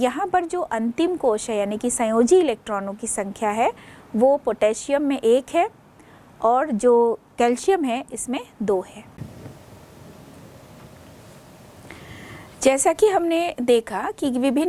पर जो अंतिम कोश है यानी कि संयोजी इलेक्ट्रॉनों की संख्या है वो पोटेशियम में 1 है और जो कैल्शियम है इसमें 2 है। जैसा कि हमने देखा कि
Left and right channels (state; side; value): identical; both; correlation 1.00